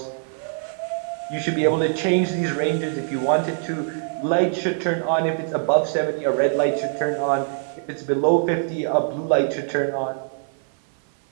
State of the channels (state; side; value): silent; left; 55 dB below the other